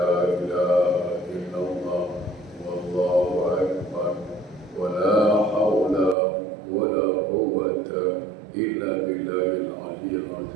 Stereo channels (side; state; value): left; drops out; at 6.2 s